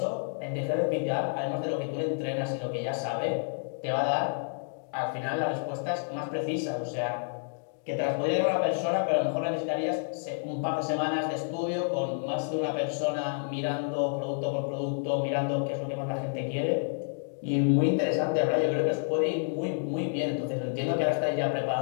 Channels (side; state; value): right; silent; digital silence